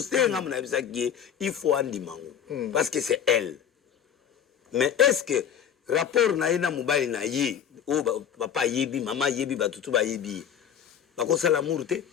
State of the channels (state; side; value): quieter; right; 8.8 dB